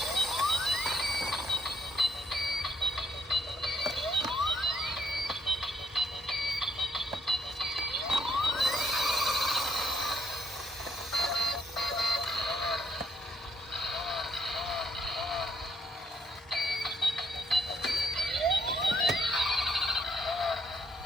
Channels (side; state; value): both; normal; correlation 0.72